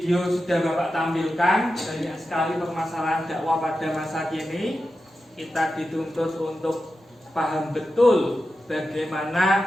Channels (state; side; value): normal; both; correlation 0.91